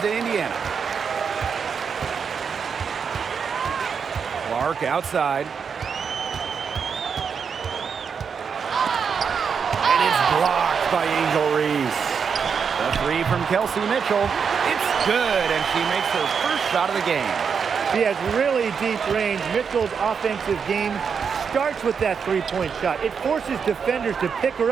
Indiana. Clark outside. And it's blocked by Angel Reese. The three from Kelsey Mitchell. It's good, and she makes her first shot of the game. She has really deep range. Mitchell's offensive game starts with that three-point shot. It forces defenders to pick her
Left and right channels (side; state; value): left; quieter; 6.4 dB